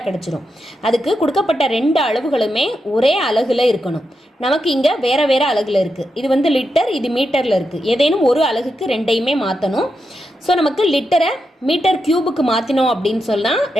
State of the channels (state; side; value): normal; both; correlation 0.86